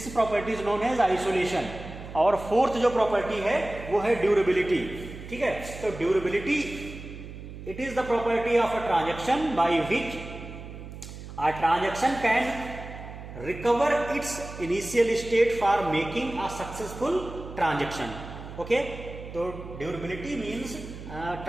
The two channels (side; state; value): right; noise; hum, 12 dB below the sound